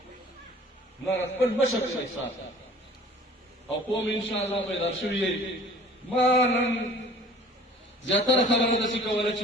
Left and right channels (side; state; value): both; normal; correlation 0.49